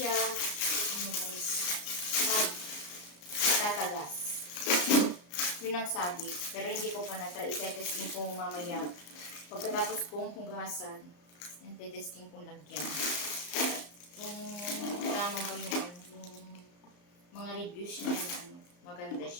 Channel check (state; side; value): late; right; 34 ms